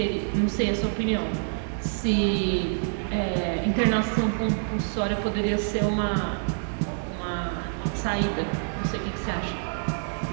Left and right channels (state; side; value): silent; left; digital silence